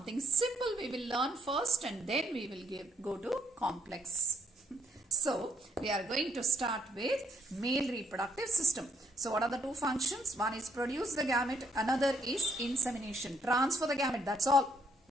simple we will learn first and then we will go to complex. So we are going to start with male reproductive system. So what are the two functions? One is produce the gamete, another is insemination. Transfer the gamete, that's all,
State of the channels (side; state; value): both; normal; correlation 0.70